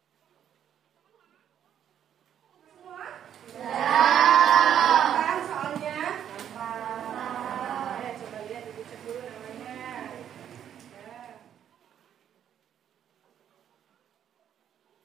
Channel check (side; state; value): left; quieter; 9.6 dB